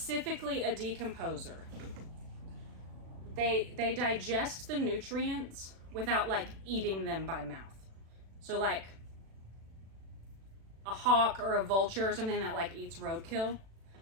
a decomposer, they digest the nutrients without like eating them by mouth. So like a hawk or a vulture or something that like eats roadkill,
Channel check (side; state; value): left; late; 36 ms